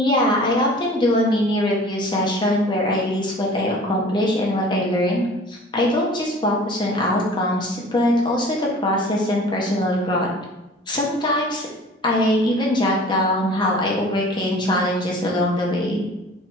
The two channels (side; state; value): both; normal; correlation 0.45